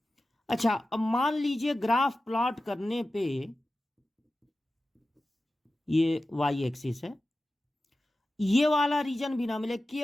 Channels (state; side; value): normal; both; correlation 0.94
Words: अच्छा, अब मान लीजिए ग्राफ प्लॉट करने पे ये वाई एक्सिस है, ये वाला रीजन भी ना मिले,